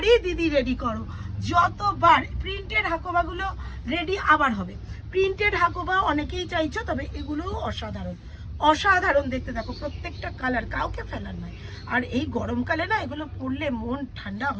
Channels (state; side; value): identical; both; correlation 1.00